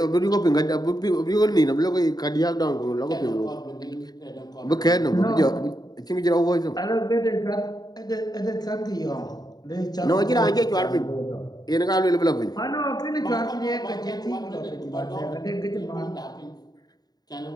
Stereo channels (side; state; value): right; late; 0.19 ms